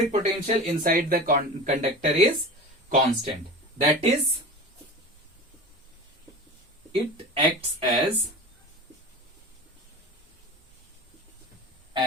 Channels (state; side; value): normal; both; correlation 0.32